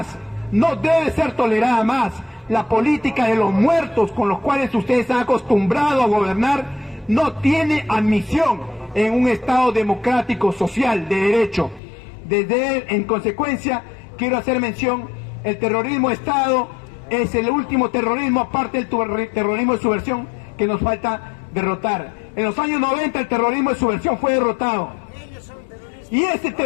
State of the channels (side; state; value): right; drops out; at 11.8 s